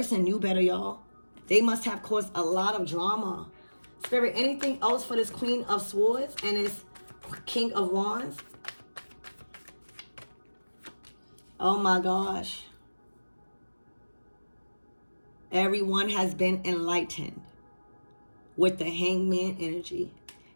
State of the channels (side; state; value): both; inverted; correlation -1.00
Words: knew better, y'all. They must have caused a lot of drama. Spirit, anything else for this Queen of Swords and this King of Wands? Oh my gosh. Everyone has been enlightened with the Hangman energy.